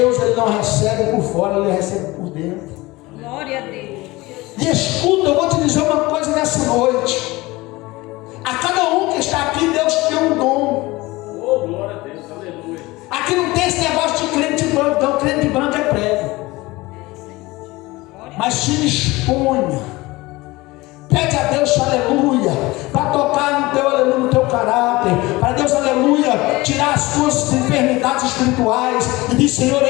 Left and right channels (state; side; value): quieter; right; 20.9 dB